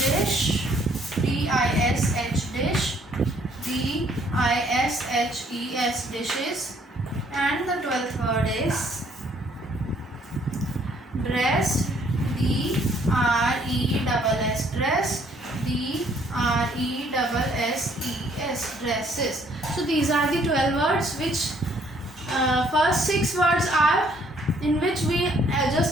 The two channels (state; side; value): normal; both; correlation 0.64